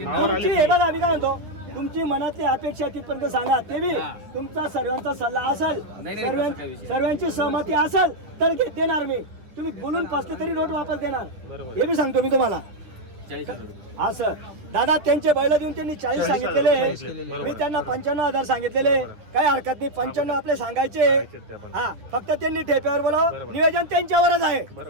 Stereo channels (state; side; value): late; left; 10 ms